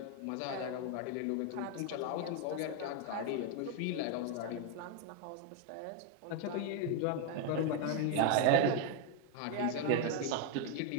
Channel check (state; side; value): different; both; correlation 0.01